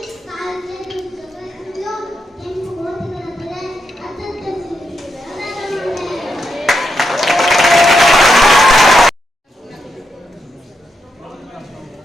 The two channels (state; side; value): normal; both; correlation 0.83